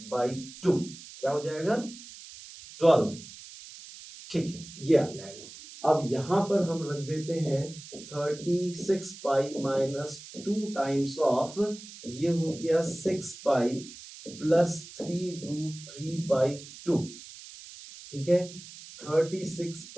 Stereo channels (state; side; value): noise; right; hiss, 16 dB below the sound